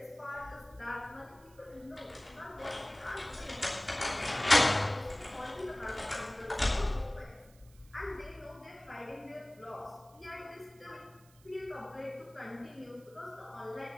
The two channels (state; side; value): noise; right; hiss, 27 dB below the sound